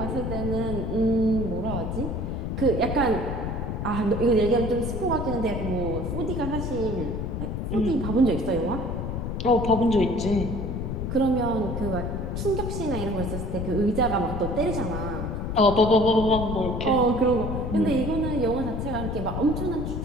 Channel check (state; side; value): noise; left; rumble, 3 dB below the sound